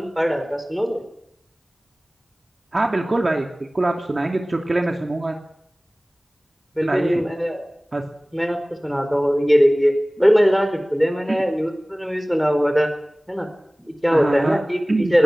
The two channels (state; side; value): normal; both; correlation 0.98